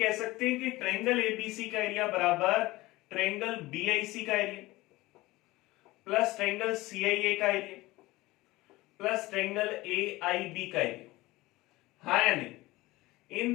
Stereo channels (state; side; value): quieter; right; 19.6 dB